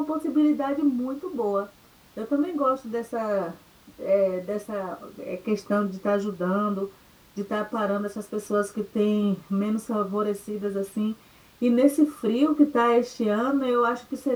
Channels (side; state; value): both; identical; correlation 1.00